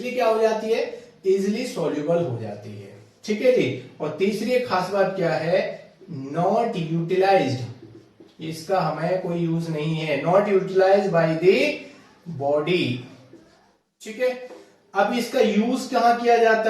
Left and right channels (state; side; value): identical; both; correlation 1.00